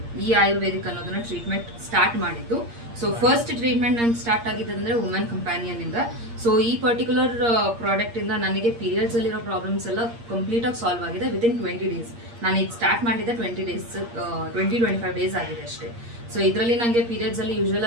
ಈ ಆಯುರ್ವೇದಿಕ್ ಅನ್ನೋದನ್ನ ಟ್ರೀಟ್ಮೆಂಟ್ ಸ್ಟಾರ್ಟ್ ಮಾಡಿದ್ದು. ಸೊ ಫಸ್ಟ್ ಟ್ರೀಟ್ಮೆಂಟ್ ನಾನು ಸ್ಟಾರ್ಟ್ ಆಗಿದ್ದಂದ್ರೆ ವುಮೆನ್ ಕಂಪ್ಯಾನಿಯನ್ ಇಂದ. ಸೊ ಈ ಪರ್ಟಿಕ್ಯುಲರ್ ಪ್ರಾಡಕ್ಟ್ ಇಂದ ನನಗೆ ಪೀರಿಯಡ್ಸ್ ಅಲ್ಲಿರೋ ಪ್ರಾಬ್ಲಮ್ಸ್ ಎಲ್ಲ ಕಂಪ್ಲೀಟ್ ಆಗಿ ಸಾಲ್ವ್ ಆಗಿದೆ ವಿತಿನ್ 20 days. ನಾನು ಈಗ ಸ್ಟಾರ್ಟ್ ಮಾಡಿದ್ದೆ 20-25 days ಆಗಿದೆ ಅಷ್ಟೇ. ಸೊ ಇದರಲ್ಲಿ ನನಗೆ ಪೀರಿಯಡ್ಸ್ ಅಲ್ಲಿ ಯೂಶುವಲ್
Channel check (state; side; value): late; left; 8.6 ms